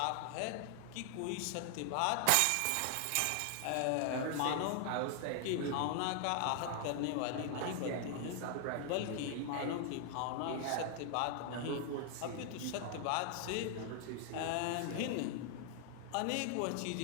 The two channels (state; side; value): different; both; correlation 0.00